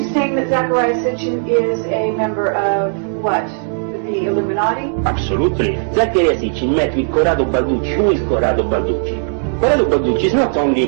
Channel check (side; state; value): left; silent; digital silence